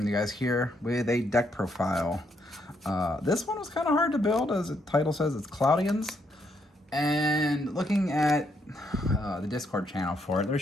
to you guys here with a deck profile. This one was kind of hard to build, as the title says, it's Cloudians. And looking at the Discord channel for it, there's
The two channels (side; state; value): both; normal; correlation 0.75